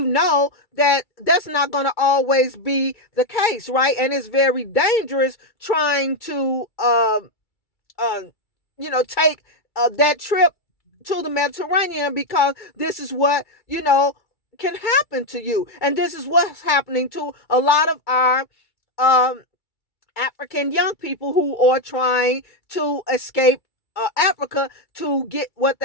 know that that's not going to always be the case, right? And it's very dangerous trying to, take that trip to the Mediterranean, because this is what, can happen to you. And this is what's happening to a lot of our um, African young people who are trying to escape Africa to get what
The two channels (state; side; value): late; right; 2.3 ms